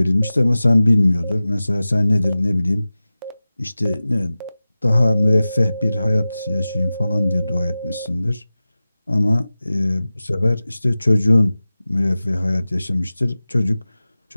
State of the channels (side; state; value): both; inverted; correlation -0.96